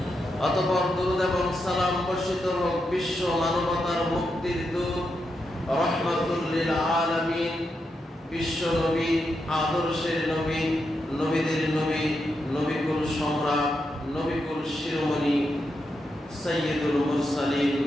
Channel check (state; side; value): normal; both; correlation 0.85